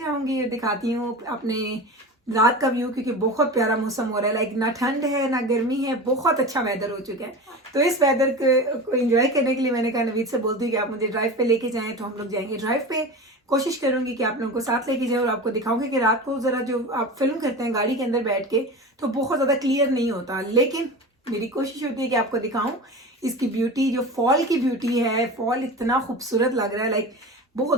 और दिखाती हूँ अपने रात का व्यू, क्योंकि बहुत प्यारा मौसम हो रहा है। लाइक ना ठंड है ना गर्मी है, बहुत अच्छा वेदर हो चुका है। तो इस वेदर को एंजॉय करने के लिए मैंने कहा नवीद से बोलती हूँ कि आप मुझे ड्राइव पे लेके जाएं, तो हम लोग जाएंगे ड्राइव पे। कोशिश करूंगी कि आप लोगों को साथ लेके जाए, और आपको दिखाऊंगी कि रात को जरा जो आप फिल्म करते हैं गाड़ी के अंदर बैठ के, तो बहुत ज़्यादा क्लियर नहीं होता, लेकिन मेरी कोशिश होती है कि आपको दिखाऊं इसकी ब्यूटी, जो फॉल की ब्यूटी है। फॉल इतना खूबसूरत लग रहा है, लाइक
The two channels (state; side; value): normal; both; correlation 0.30